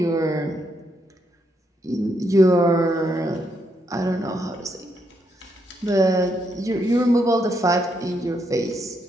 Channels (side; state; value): both; normal; correlation 0.78